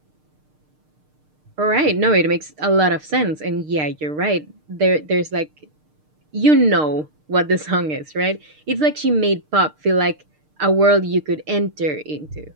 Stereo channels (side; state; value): left; late; 6.6 ms